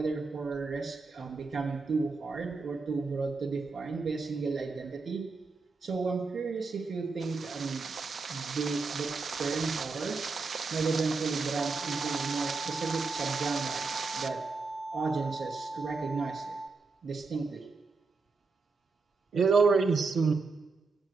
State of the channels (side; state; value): left; quieter; 4.2 dB